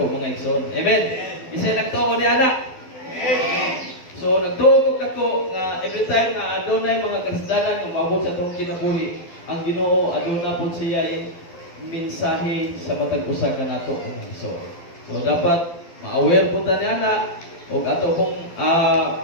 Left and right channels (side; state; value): right; late; 12 ms